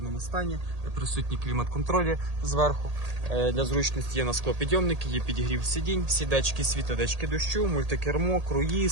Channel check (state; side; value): late; left; 1.8 ms